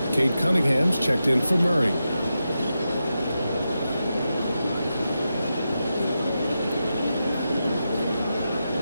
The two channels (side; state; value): both; inverted; correlation -0.89